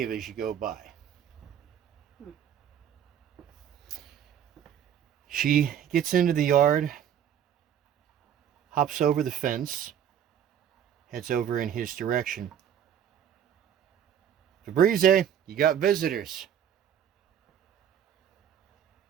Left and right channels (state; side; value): quieter; left; 9.3 dB